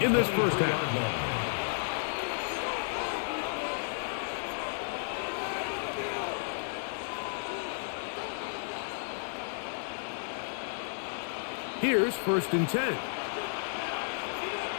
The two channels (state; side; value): silent; right; 56 dB below the other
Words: in this first half. Here's 1st and 10.